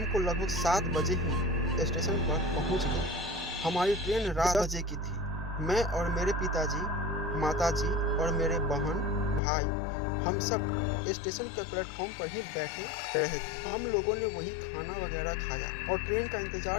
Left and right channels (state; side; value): drops out; right; at 9.4 s